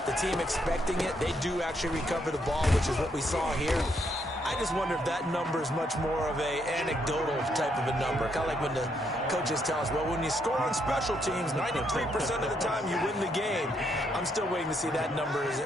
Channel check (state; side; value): normal; both; correlation 0.75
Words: the team expecting it, they do actually recover the ball, which is what we saw here. I just wonder if that number is much more of a anecdotal type of a number. Kind of like when the coaches tell us, well, when you score on special teams, 93% of the time you win the game. I'm still waiting to see that number is